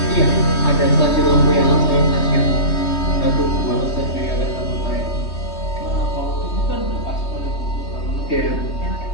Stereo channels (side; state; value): right; late; 3.2 ms